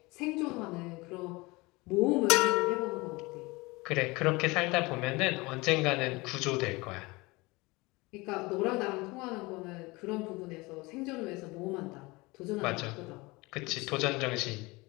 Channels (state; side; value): quieter; right; 23.5 dB